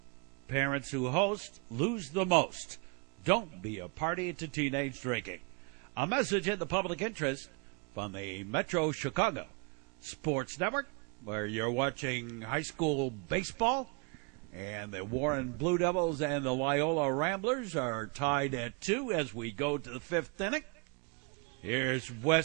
Parents who host lose the most. Don't be a party to teenage drinking. A message in the public interest from the Metro Chicago Sports Network, where you're watching high school baseball, and the Warren Blue Devils and the Loyola Ramblers are tied at 2 as we go to the 5th inning. Here's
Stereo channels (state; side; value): quieter; left; 33.5 dB